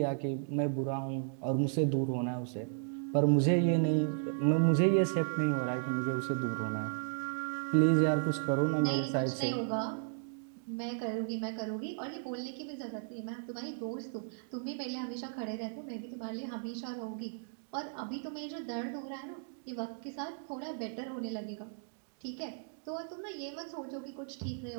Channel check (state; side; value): silent; left; digital silence